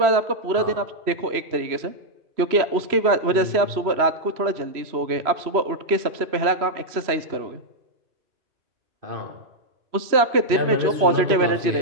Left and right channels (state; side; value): late; left; 3.0 ms